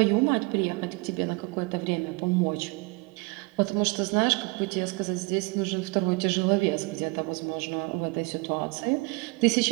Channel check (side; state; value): left; quieter; 27.4 dB